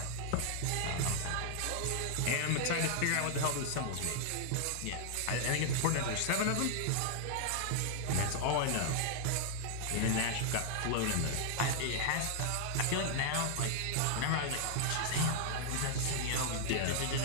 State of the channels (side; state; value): both; different; correlation -0.01